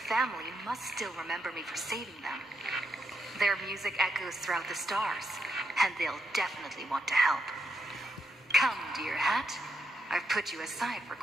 must still remember me for saving them. Their music echoes throughout the stars, and they'll definitely want to help. Come, dear hat. I've put you aside for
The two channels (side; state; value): both; normal; correlation 0.81